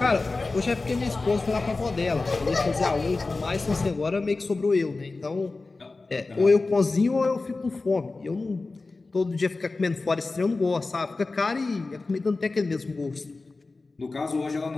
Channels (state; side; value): quieter; right; 3.6 dB